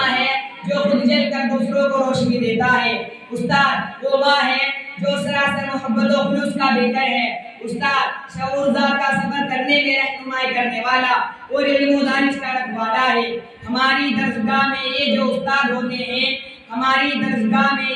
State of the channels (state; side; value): identical; both; correlation 1.00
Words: है जो खुद जलकर दूसरों को रोशनी देता है। उस्ताद वो माँ है जो सरासर मोहब्बत और खुलूस का बेकर है। उस्ताद शऊरदार का सफर करने में रहनुमाई करने वाला और इल्म व दानिश का रखवाला है। हमारी दरसगाह में ये जो उस्ताद होते हैं, हमारी दरसगाह में